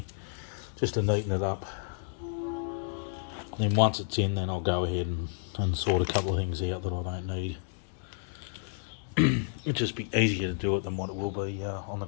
just to neaten it up. And then once it's in, then I'll go ahead and sort a couple of things out that I don't need. It'll just be easier to do it than what it will be on the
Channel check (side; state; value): right; silent; digital silence